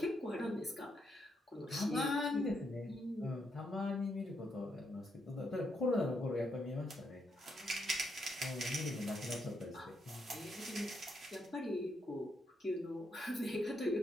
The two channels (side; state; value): both; normal; correlation 0.78